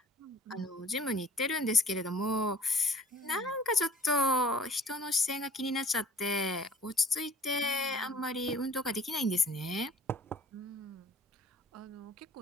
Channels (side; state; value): both; normal; correlation 0.53